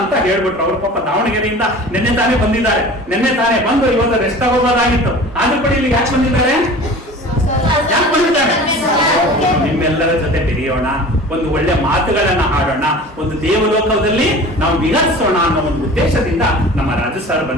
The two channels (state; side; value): normal; both; correlation 0.40